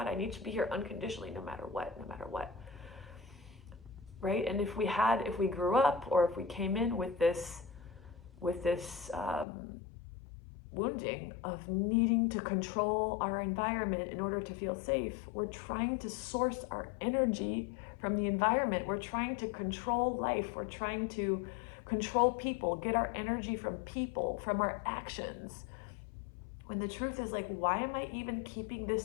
I need to be here unconditionally, no matter what. Right? And if we grew up, or if we came in with this wounding of needing to control our environment in order to feel safe, we're trying to source our energy from the environment. We're trying to control life. We're trying to control people, get our energy from people, from our actions. When the truth is like, why am I even keeping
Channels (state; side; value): drops out; right; at 9.5 s